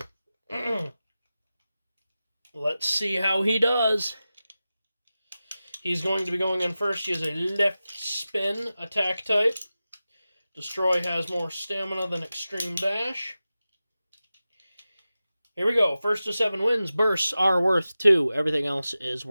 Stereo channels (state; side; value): inverted; both; correlation -0.94